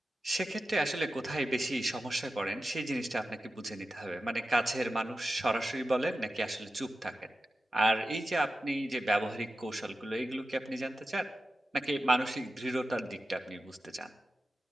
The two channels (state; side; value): normal; both; correlation 0.92